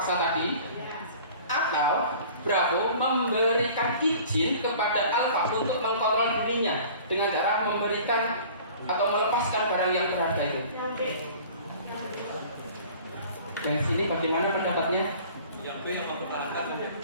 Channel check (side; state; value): both; inverted; correlation -0.46